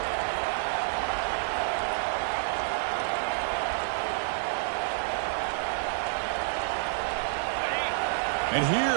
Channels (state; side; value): silent; left; digital silence